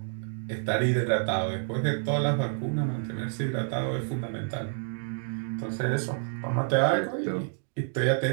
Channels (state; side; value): silent; left; digital silence